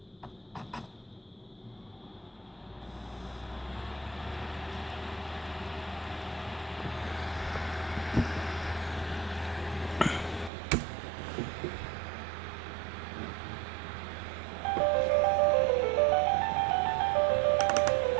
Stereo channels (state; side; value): drops out; left; at 10.5 s